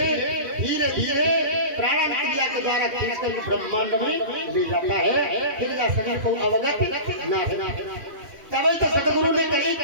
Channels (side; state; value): left; late; 2.7 ms